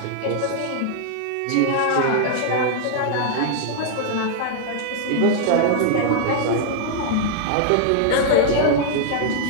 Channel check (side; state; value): both; different; correlation -0.01